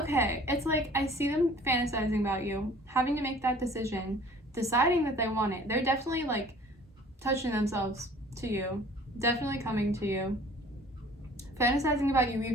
it's like I see them fantasizing about you, having to make that decision, deciding that they want it. They're definitely like touching themselves to you, definitely coming to you, fantasizing about you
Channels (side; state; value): both; normal; correlation 0.50